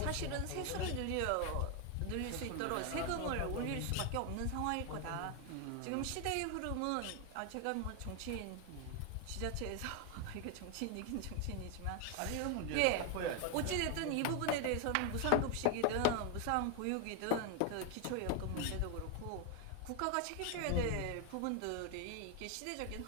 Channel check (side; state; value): both; different; correlation 0.01